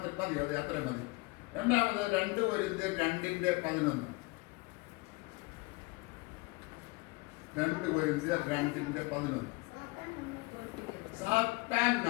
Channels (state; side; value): quieter; right; 24.5 dB